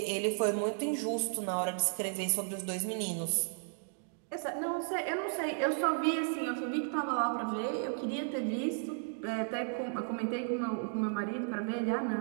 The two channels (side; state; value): left; silent; digital silence